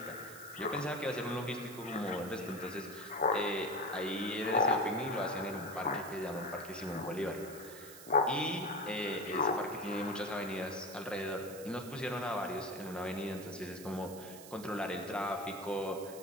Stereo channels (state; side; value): noise; right; hiss, 15 dB below the sound